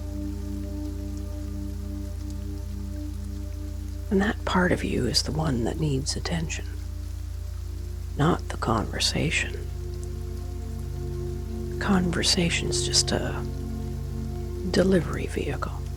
And that part of you is the one that needs attention, not the conversation. Conversation's just a delivery vehicle.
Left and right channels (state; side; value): identical; both; correlation 1.00